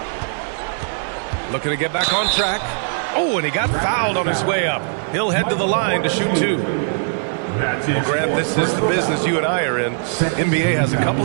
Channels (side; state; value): left; silent; 55 dB below the other